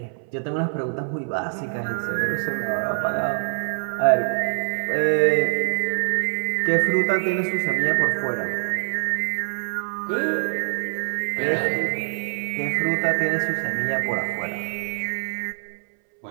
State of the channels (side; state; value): left; silent; 61 dB below the other